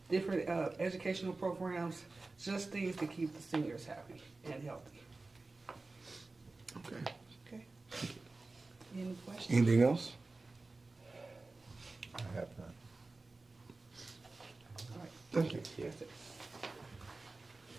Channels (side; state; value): left; quieter; 3.4 dB